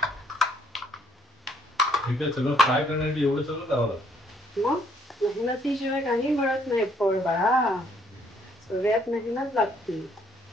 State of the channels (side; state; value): both; normal; correlation 0.66